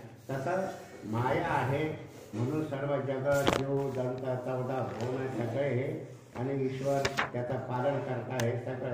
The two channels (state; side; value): identical; both; correlation 1.00